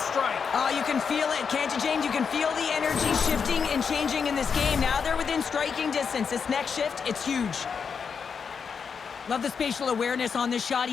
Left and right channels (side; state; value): right; quieter; 6.2 dB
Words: strike. Oh, you can feel it, can't you, James? You can feel the energy shifting and changing in this game. Now they're within striking distance. This next shift, it's huge. Love the spatial awareness on this shot.